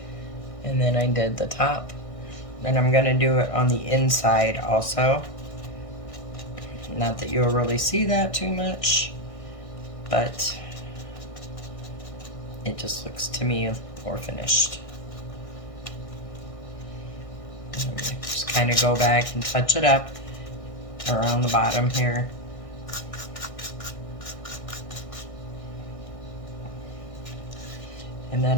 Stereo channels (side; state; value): right; late; 1.6 ms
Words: and then I did the top. Then I'm going to do it on the inside also. Not that you'll really see that too much, but it just looks to me more finished. Just kind of go back and touch it up around the bottom here. And then